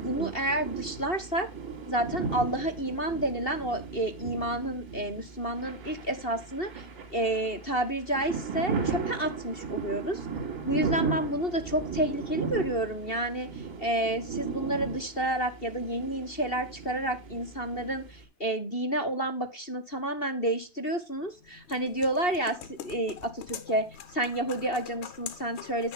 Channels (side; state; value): right; late; 2.7 ms